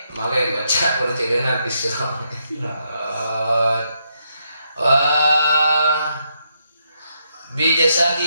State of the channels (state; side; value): inverted; both; correlation -0.78